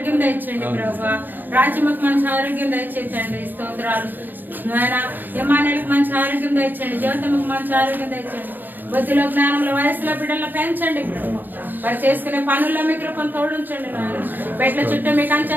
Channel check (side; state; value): left; late; 0.092 ms